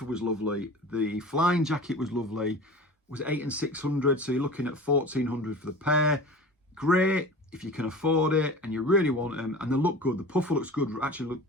was lovely. The flying jacket was lovely. Was 8 and 600, so you're looking at 1,400 for the pair. Great if you can afford it and you really want them, and they look good. The puffer looks good. Actually,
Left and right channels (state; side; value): normal; both; correlation 0.36